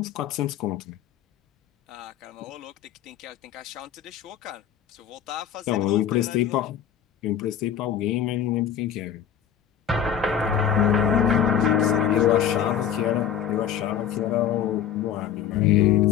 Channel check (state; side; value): quieter; right; 9.1 dB